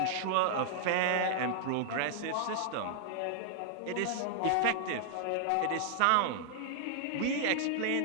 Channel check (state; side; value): different; both; correlation -0.01